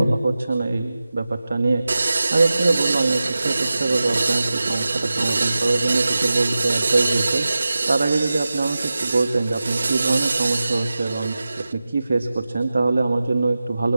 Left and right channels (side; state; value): both; inverted; correlation -0.96